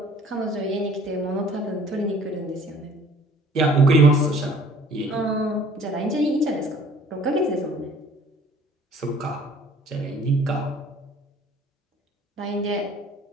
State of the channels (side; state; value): both; normal; correlation 0.53